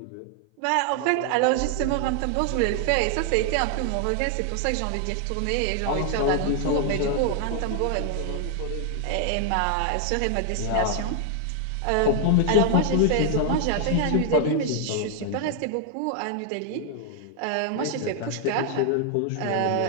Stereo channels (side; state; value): both; different; correlation 0.00